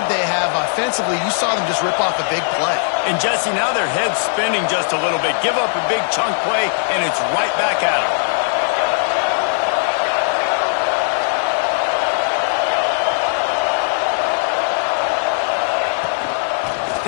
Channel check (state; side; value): silent; right; digital silence